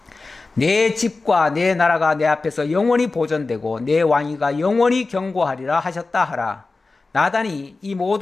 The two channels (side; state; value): right; quieter; 3.7 dB